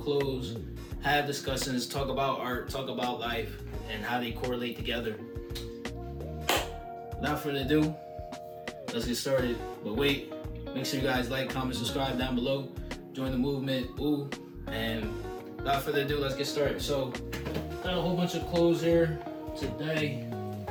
clothes, have discussions, talk about art, talk about life, and how they correlate together. Without further ado, let's get started. But wait, make sure you guys like, comment, subscribe down below. Join the movement, and without further ado, let's get started. So, got a whole bunch of clothes here today.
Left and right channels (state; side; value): identical; both; correlation 1.00